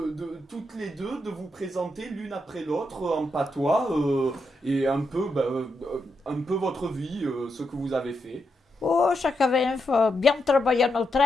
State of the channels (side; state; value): both; normal; correlation 0.83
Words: toutes les deux de vous présenter l'une après l'autre en patois et un peu votre vie, ce que vous avez fait? Oh, ça avait bien travaillé no